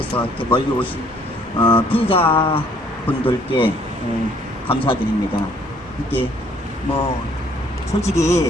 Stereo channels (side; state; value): both; normal; correlation 0.62